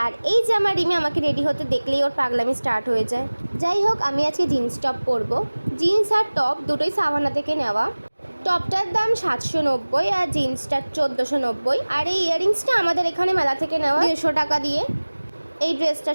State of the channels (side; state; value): both; inverted; correlation -1.00